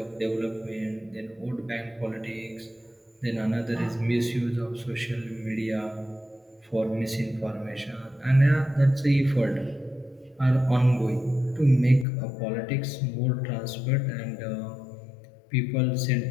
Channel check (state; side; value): drops out; right; at 12.1 s